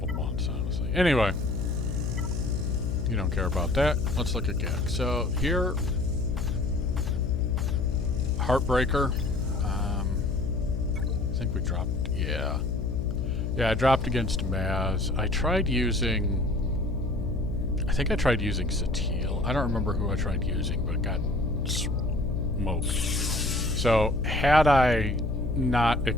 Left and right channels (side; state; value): left; noise; hum, 1 dB below the sound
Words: months, honestly. Anyway, you don't care about that. Let's look at GAC. So here, Heartbreaker. I think we dropped, yeah, I dropped against Maz. I tried using Satil. I don't remember who I tried using, but it got smoked. So had I not